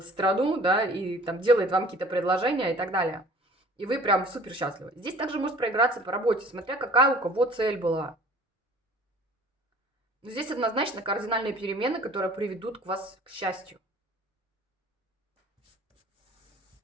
страну, да, и там делает вам какие-то предложения и так далее. И вы прям супер счастливы. Здесь также может проиграться по работе, смотря какая у кого цель была. Но здесь однозначно кардинальные перемены, которые приведут к вас к счастью.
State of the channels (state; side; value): normal; both; correlation 0.48